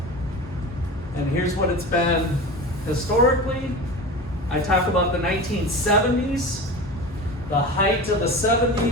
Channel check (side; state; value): both; normal; correlation 0.31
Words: And here's what it's been historically. I talk about the 1970s, the height of the